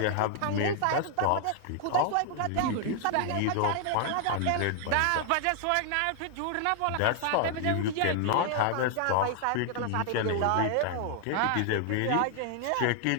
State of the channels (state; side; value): different; both; correlation 0.00